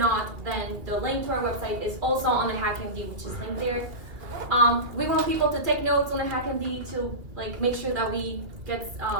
then the link to our website is also on the HackMD, which is linked there. We want people to take notes on the HackMD to make sure that we get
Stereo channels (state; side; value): late; left; 2.2 ms